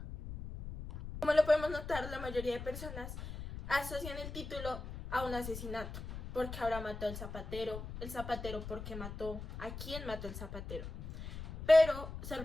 Como lo podemos notar, la mayoría de personas asocian el título a un asesinato. ¿Por qué ahora mató al zapatero? ¿El zapatero por qué mató? ¿A quién mató el zapatero? Pero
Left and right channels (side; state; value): left; noise; rumble, 9 dB below the sound